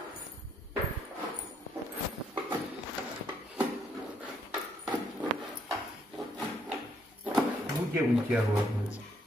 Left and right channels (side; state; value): both; normal; correlation 0.72